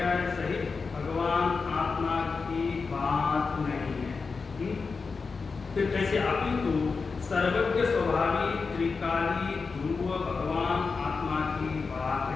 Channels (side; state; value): right; quieter; 4.7 dB